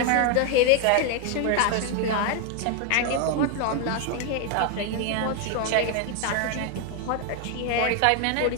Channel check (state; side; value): different; both; correlation 0.01